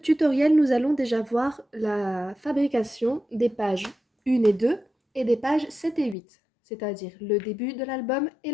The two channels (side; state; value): right; drops out; at 6.2 s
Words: nous allons déjà voir la fabrication des pages 1 et 2 et des pages 7 et 8, c'est-à-dire le début de l'album et